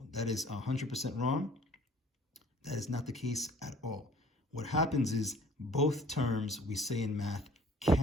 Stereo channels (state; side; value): normal; both; correlation 0.53